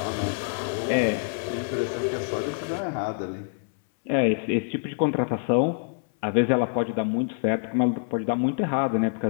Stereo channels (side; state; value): right; silent; 61 dB below the other